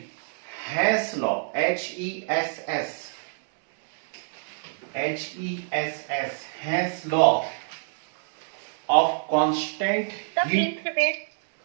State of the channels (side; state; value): left; silent; digital silence